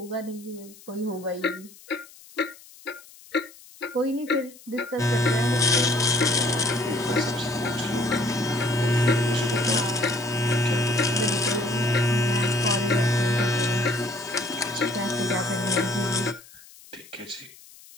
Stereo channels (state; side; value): noise; left; hiss, 22 dB below the sound